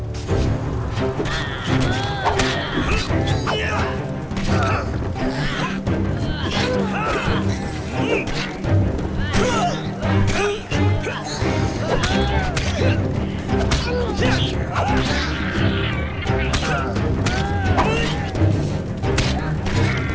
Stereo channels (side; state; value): both; identical; correlation 1.00